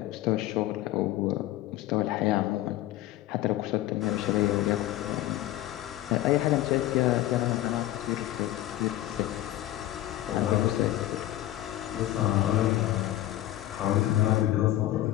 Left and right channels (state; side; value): quieter; right; 14.6 dB